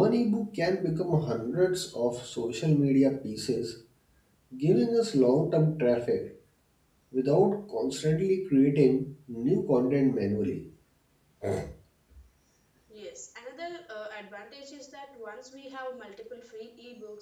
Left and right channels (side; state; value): both; identical; correlation 1.00